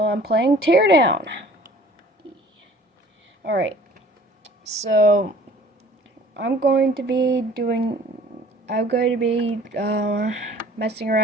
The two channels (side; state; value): both; normal; correlation 0.50